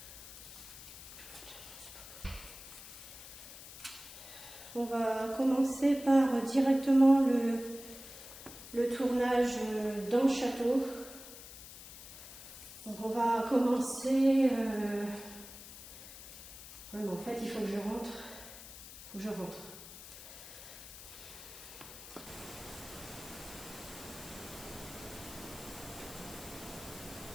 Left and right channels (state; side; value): noise; left; hiss, 14 dB below the sound